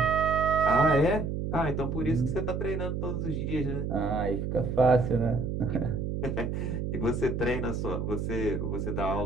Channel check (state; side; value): noise; right; hum, 2 dB below the sound